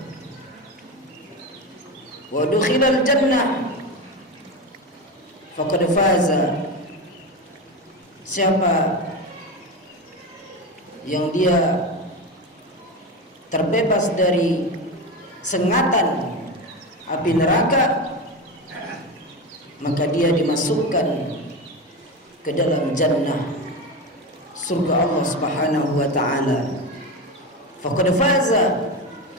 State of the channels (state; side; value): normal; both; correlation 0.20